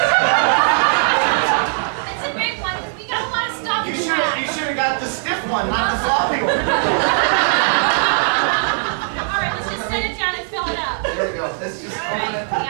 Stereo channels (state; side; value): silent; left; digital silence